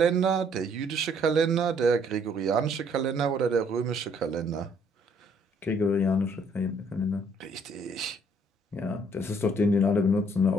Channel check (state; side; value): normal; both; correlation 0.64